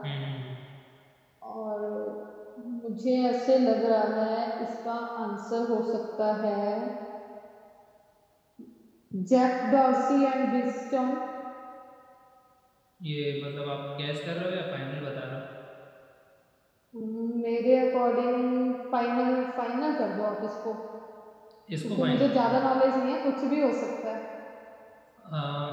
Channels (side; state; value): both; identical; correlation 1.00